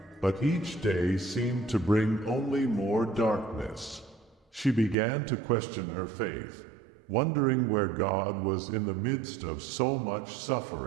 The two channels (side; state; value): left; drops out; at 5.0 s